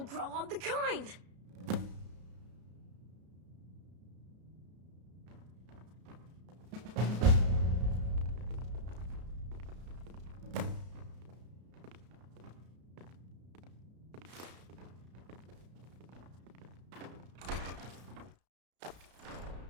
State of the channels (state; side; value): late; left; 33 ms